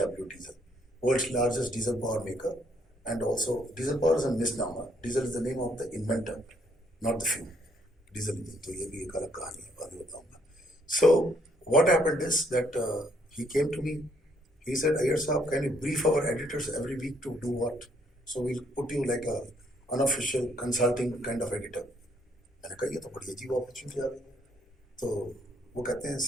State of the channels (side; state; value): both; normal; correlation 0.68